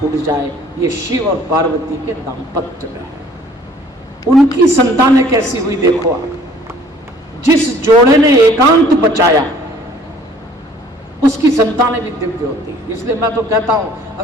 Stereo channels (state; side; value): normal; both; correlation 0.55